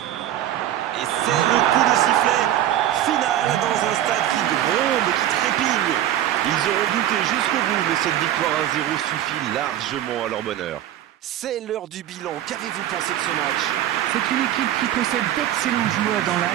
Et c'est le coup de sifflet final dans un stade qui gronde, qui trépigne. Ils auront douté jusqu'au bout, mais cette victoire 1-0 suffit largement à leur bonheur. C'est l'heure du bilan. Qu'avez-vous pensé de ce match? C'est une équipe qui possède d'excellents joueurs dans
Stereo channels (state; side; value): quieter; left; 12.1 dB